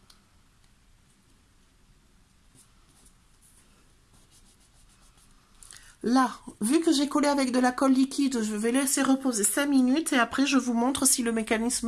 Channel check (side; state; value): both; identical; correlation 1.00